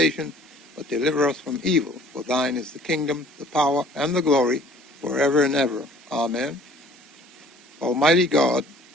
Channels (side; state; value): both; normal; correlation 0.53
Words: but deliver us from evil. For thine is the kingdom, the power, and the glory, forever and ever. Amen. Almighty God,